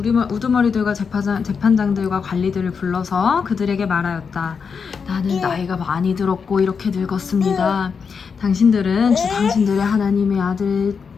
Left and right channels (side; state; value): right; quieter; 5.9 dB